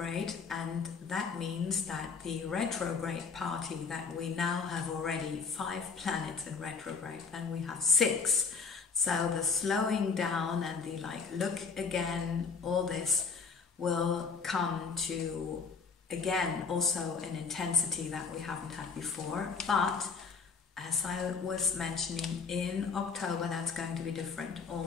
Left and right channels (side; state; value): right; quieter; 5.2 dB